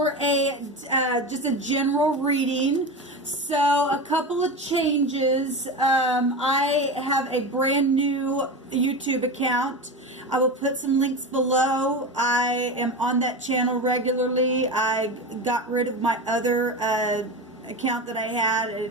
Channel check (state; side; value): normal; both; correlation 0.24